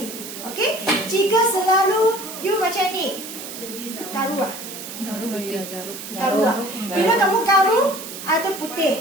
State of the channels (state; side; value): noise; right; hiss, 10 dB below the sound